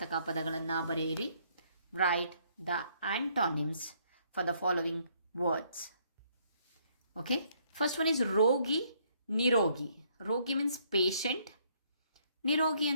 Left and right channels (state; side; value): inverted; both; correlation -0.68